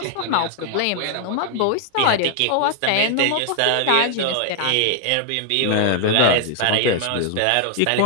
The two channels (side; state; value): both; different; correlation 0.00